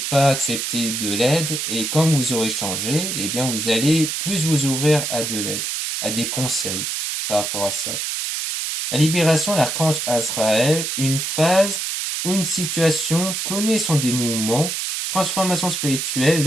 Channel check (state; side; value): noise; right; hiss, 2 dB below the sound